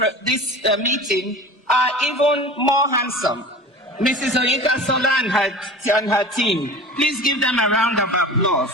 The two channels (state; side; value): normal; both; correlation 0.37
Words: meeting are even more handsome. Mrs. Oyinka Sola and her team. Please give them a round of applause.